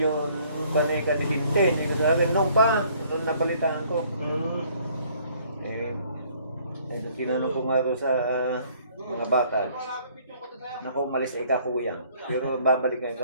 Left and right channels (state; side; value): inverted; both; correlation -0.60